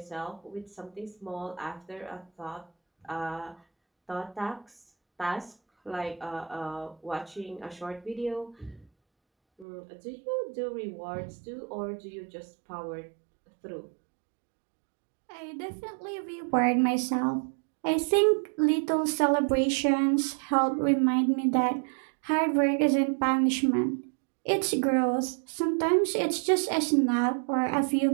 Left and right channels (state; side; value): drops out; left; at 9.7 s